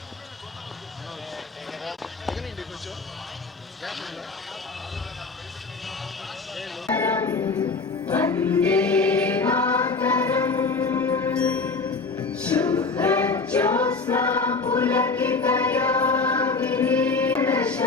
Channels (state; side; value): quieter; right; 4.2 dB